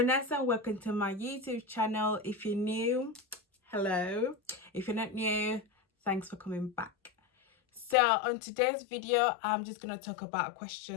Welcome to my YouTube channel. If you're new, hello. If you're not new, thanks for coming back. So on today's video, I'm just going to talk about a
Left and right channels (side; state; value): right; drops out; at 8.0 s